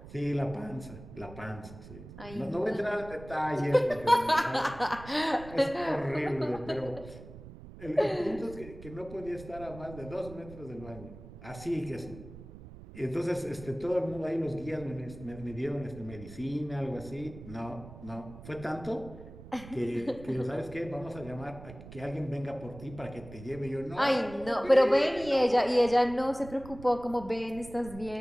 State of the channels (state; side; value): noise; right; rumble, 15 dB below the sound